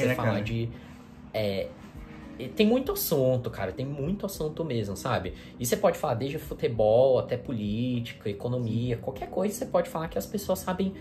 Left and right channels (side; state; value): both; identical; correlation 1.00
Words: você né, falar cara? de... tem muito assunto, cara, tem muito assunto mesmo, sabe? E você pode falar desde futebol até política, economia, qualquer coisa você pode falar que as pessoas sabem